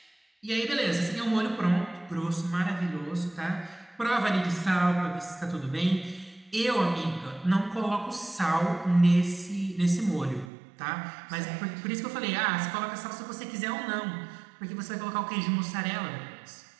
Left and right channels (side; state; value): left; drops out; at 10.5 s